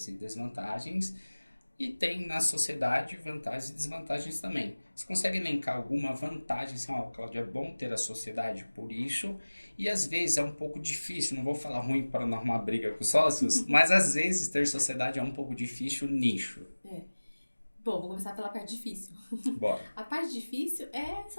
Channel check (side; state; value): both; inverted; correlation -1.00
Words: e desvantagens. E tem na sociedade vantagens e desvantagens também. Você consegue elencar alguma vantagem, assim, Cláudio, é bom ter a sociedade por isso, e às vezes é um pouco difícil, não vou falar ruim para não arrumar briga com os sócios, mas às vezes ter sociedade é um pouco difícil nicho. Bom, vou começar pela parte difícil. Bora. A parte difícil é